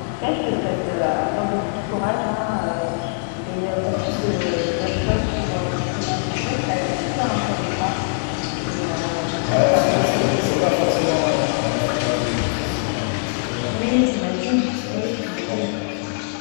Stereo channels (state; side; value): silent; right; 64 dB below the other